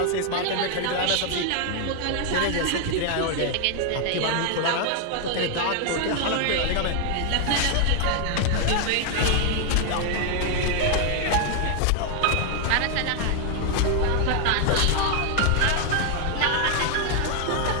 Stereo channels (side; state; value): both; different; correlation 0.00